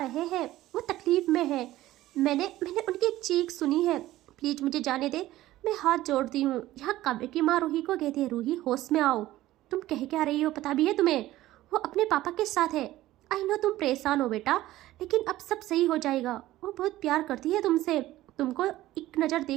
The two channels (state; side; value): quieter; left; 15.6 dB